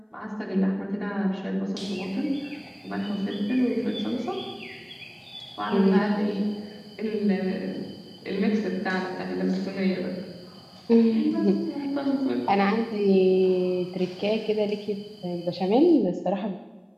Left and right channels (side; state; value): both; identical; correlation 1.00